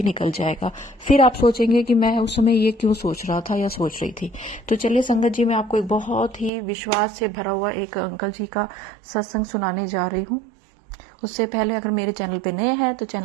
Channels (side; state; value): left; drops out; at 6.5 s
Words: निकल जाएगा। फिर आप सोचेंगे कि मैं उस समय ये क्यों सोच रहा था या सोच रही थी। तो चलिए संगत जी, मैं आपको एक बहुत ही विश्वास से भरा हुआ एक अंकल जी का सत्संग सुनाने जा रही हूँ। उससे पहले अगर मेरे चैनल पे नए हैं तो